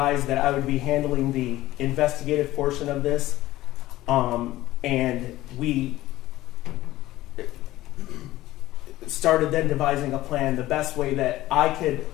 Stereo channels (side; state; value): right; quieter; 16.2 dB